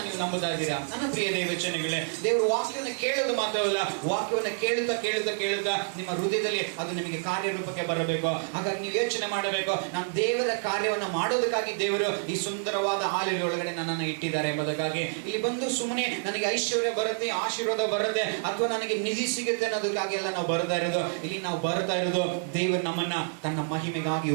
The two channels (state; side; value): silent; left; digital silence